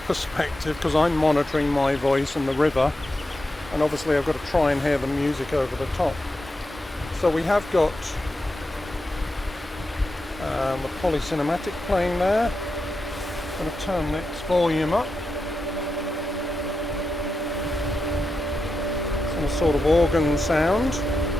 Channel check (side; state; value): both; normal; correlation 0.88